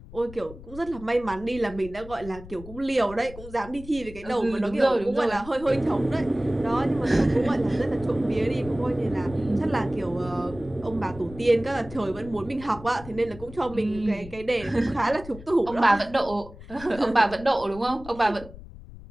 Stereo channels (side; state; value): left; noise; rumble, 16 dB below the sound